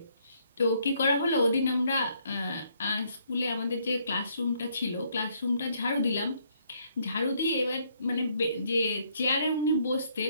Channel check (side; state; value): both; inverted; correlation -0.69